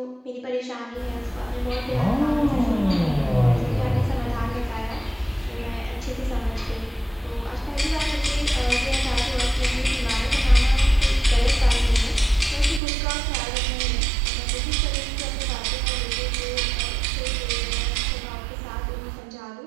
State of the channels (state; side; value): drops out; left; at 12.8 s